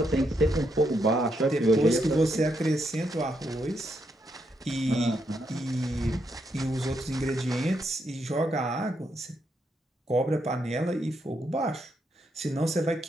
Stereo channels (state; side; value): normal; both; correlation 0.78